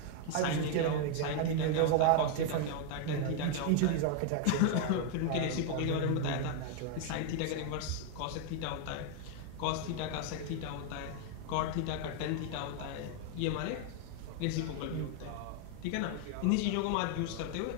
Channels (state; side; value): different; both; correlation 0.01